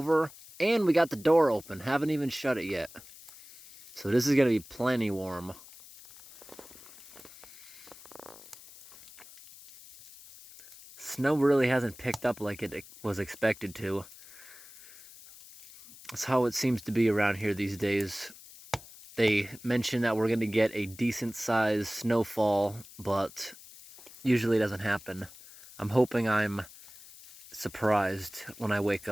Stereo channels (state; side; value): noise; left; hiss, 19 dB below the sound